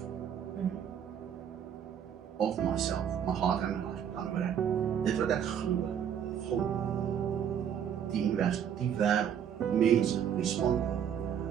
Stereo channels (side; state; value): left; quieter; 8.7 dB